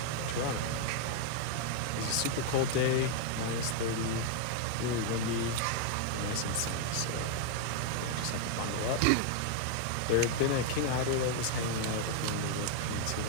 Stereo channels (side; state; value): both; different; correlation 0.00